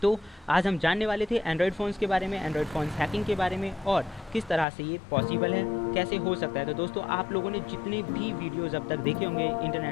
तो आज हम जानने वाले थे एंड्रॉयड फ़ोन्स के बारे में, एंड्रॉयड फ़ोन्स हैकिंग के बारे में और किस तरह से ये पॉसिबल है, कैसे हो सकता है। तो दोस्तों आप लोगों ने जितने भी वीडियोस अब तक देखे होंगे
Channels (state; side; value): drops out; right; at 4.7 s